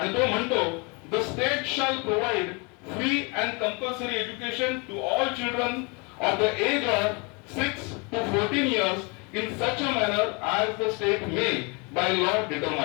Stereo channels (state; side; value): quieter; right; 31.0 dB